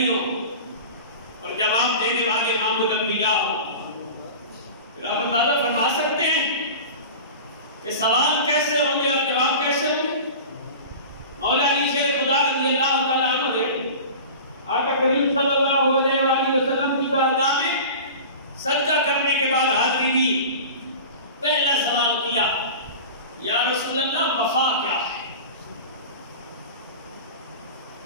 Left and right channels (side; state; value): both; inverted; correlation -0.35